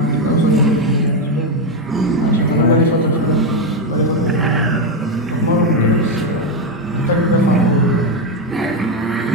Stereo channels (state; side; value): normal; both; correlation 0.07